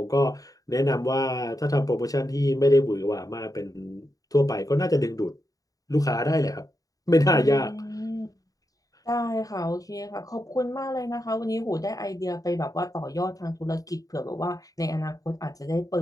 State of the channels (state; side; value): late; right; 0.17 ms